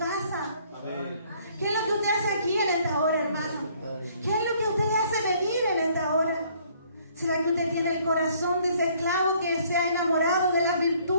Amén. ¿Qué es lo que usted hace aquí en esta hora, hermano? ¿Qué es lo que usted le hace venir en esta hora? ¿Será que usted tiene el corazón de ese esclavo que se ha enamorado de las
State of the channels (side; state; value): both; inverted; correlation -0.62